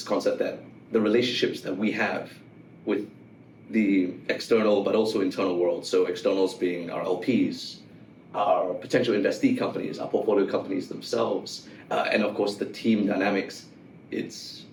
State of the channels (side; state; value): both; identical; correlation 1.00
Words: concept that the relationships that we have with the external but also internal world, so externals being our LPs, our potential investee companies, our portfolio companies themselves, and of course the team dynamics, it's